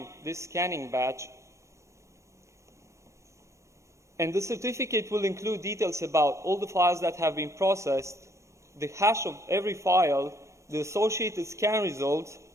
this scanning batch. And the certificate will include details about all the files that have been processed, the hash of every file, the associated scan results,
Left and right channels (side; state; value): left; late; 0.15 ms